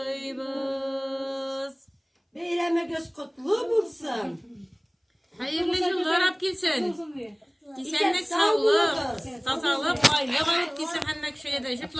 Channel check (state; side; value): identical; both; correlation 1.00